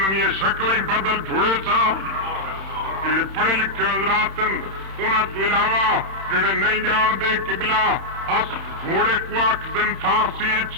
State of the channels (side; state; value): left; late; 31 ms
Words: शक्ल ही बदल छुड़े सा। जेडे पढ़े लिखे हजरात उन्हां तो इलावा जेडे नहीं जानते किबला अस घोड़े को आखदन फारसी